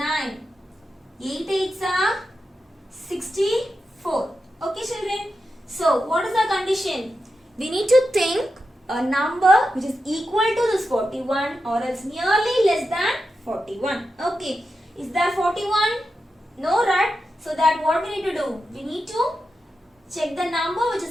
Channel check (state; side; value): normal; both; correlation 0.89